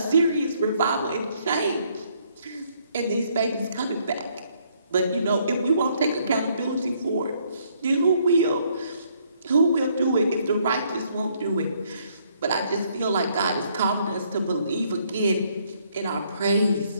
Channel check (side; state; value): both; inverted; correlation -0.68